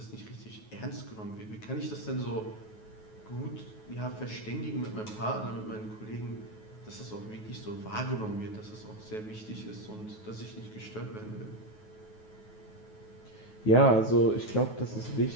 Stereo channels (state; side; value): late; right; 9.3 ms